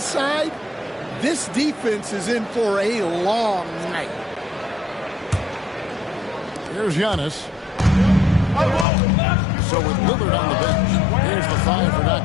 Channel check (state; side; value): drops out; right; at 8.8 s